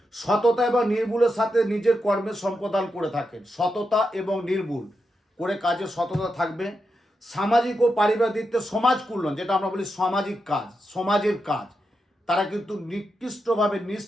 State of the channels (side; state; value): both; normal; correlation 0.86